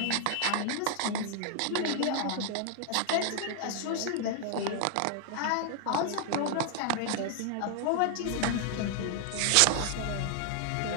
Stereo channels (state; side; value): different; both; correlation 0.00